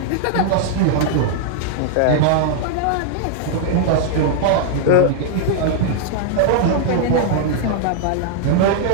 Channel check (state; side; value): different; both; correlation -0.01